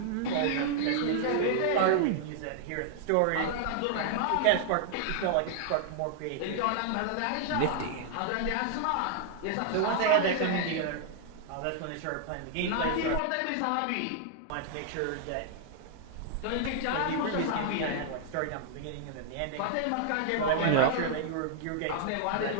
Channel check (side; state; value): both; different; correlation -0.01